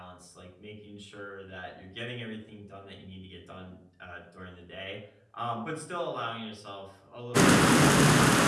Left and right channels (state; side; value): identical; both; correlation 1.00